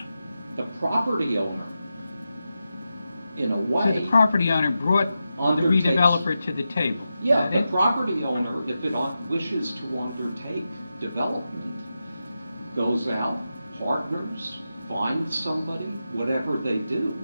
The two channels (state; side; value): inverted; both; correlation -0.90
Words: The property owner, in a way... So the property owner brought the redeveloper to the table? Yeah, the property owner, if it wishes to undertake development, goes out, partners, finds somebody, whatever they do,